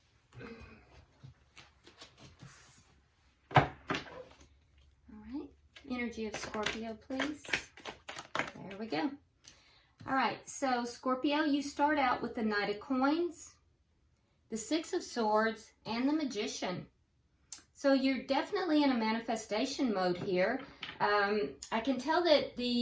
All right, energy of Scorpio, please. There we go. All right, so Scorpio, you start out with the Knight of Coins, the Six of Swords, and the Magician. So you're definitely in a manifestation mode here. I can tell that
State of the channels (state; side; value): identical; both; correlation 1.00